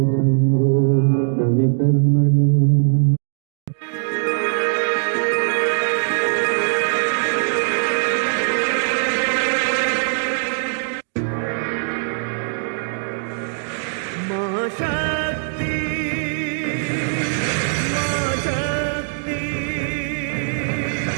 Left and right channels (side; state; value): left; silent; digital silence